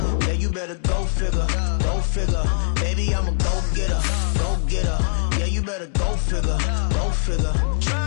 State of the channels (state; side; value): silent; right; digital silence